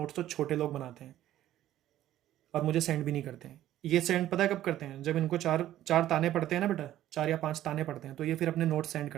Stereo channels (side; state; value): left; quieter; 13.1 dB